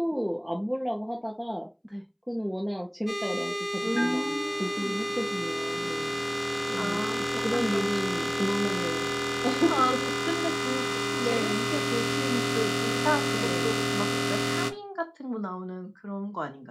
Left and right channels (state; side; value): identical; both; correlation 1.00